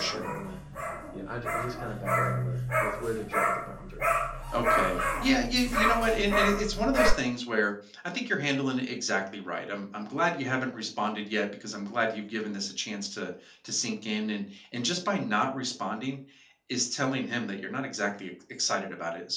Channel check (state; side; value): identical; both; correlation 1.00